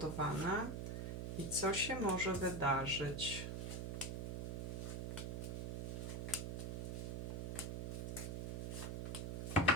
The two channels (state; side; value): noise; right; hum, 2 dB below the sound